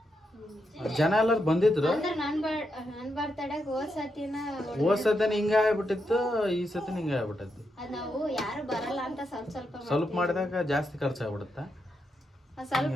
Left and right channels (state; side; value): normal; both; correlation 0.83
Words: ಜನ ಎಲ್ಲರೂ ಬಂದಿದ್ರು. ಅಂದ್ರೆ ನನ್ ಬರ್ತಡೆಗೆ ಹೋದ್ ಸತಿನ ಹಿಂಗ ಆಗ್ಬಿಟ್ಟಿತ್ತು, ಈ ಸತಿನ ಹಿಂಗ ಆಗ್ಬಿಟ್ಟೈತಿ. ಅದ್ ನಾವು ಯಾರು ಬರಲ್ಲ ಅಂತ ಸ್ವಲ್ಪ ಮಾಡಿದಾಗ ಜಾಸ್ತಿ ಖರ್ಚಾಗ್ಬಿಡುತ್ತೆ. ಸ್ವಲ್ಪ